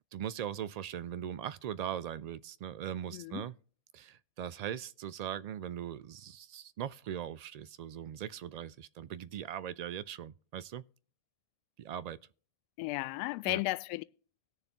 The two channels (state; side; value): late; left; 1.8 ms